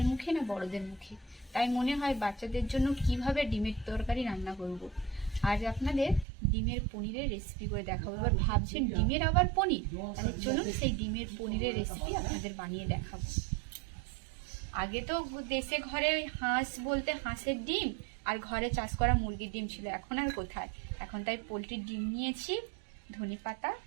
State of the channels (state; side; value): drops out; left; at 6.2 s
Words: মুখে না বড়দের মুখে। তাই মনে হয় বাচ্চাদের জন্য কিভাবে ডিমের তরকারি রান্না করব। আজ আপনাদের ডিমের পনিরের রেসিপি করে দেখাবো। এবার ভাবছেন ডিমের আবার পনির, তাহলে চলুন সেই ডিমের পনিরের রেসিপি আপনাদের বানিয়ে দেখাবো। আগে তো দেশে ঘরে হাঁস বলতে হাঁসের ডিম আর ঘরে চাষ করা মুরগির ডিম ছিল, এখন আর কোথায়। এখন তাই পোলট্রির ডিম নিয়েছি, ধনেপাতা,